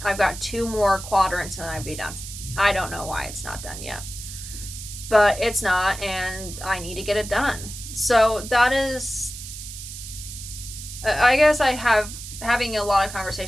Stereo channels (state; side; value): noise; right; hiss, 11 dB below the sound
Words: I've got 2 more quadrants and then I'd be done. I don't know why it's not done yet, but it's not, and I need to get it done. So that is, I guess having a lot of